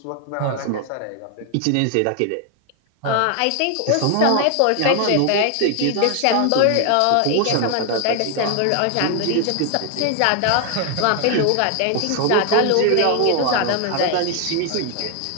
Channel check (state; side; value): different; both; correlation 0.00